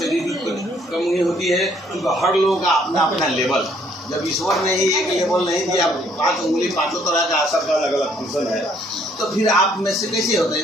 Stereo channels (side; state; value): both; normal; correlation 0.65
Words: भी कमी होती है, क्योंकि हर लोगों का अपना अपना लेवल, जब ईश्वर ने ही एक लेवल नहीं दिया, 5 उंगली 5 तरह का असर का अलग अलग फंक्शन है, तो फिर आप में से कैसे होता है?